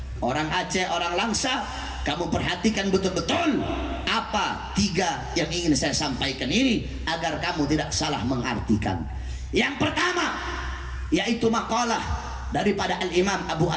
Orang Aceh, orang Langsa, kamu perhatikan betul-betul apa 3 yang ingin saya sampaikan ini agar kamu tidak salah mengartikan. Yang pertama, yaitu makalah daripada Al-Imam Abu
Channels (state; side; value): identical; both; correlation 1.00